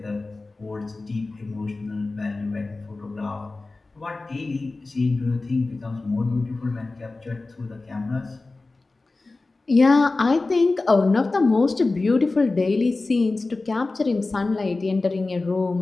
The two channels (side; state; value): right; quieter; 3.4 dB